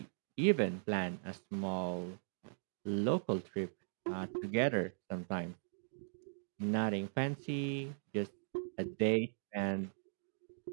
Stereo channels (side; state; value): left; silent; digital silence